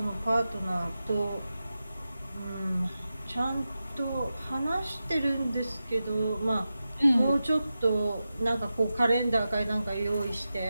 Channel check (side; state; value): both; inverted; correlation -0.92